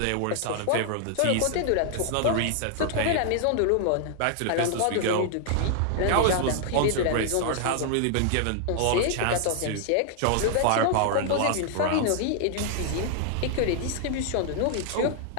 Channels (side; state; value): both; different; correlation 0.00